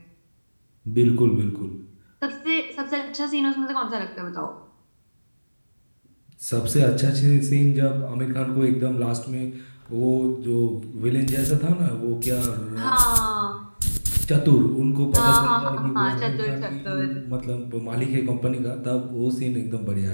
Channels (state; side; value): inverted; both; correlation -1.00